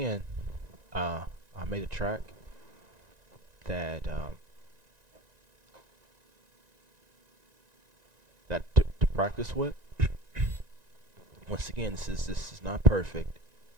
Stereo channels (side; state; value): left; late; 1.9 ms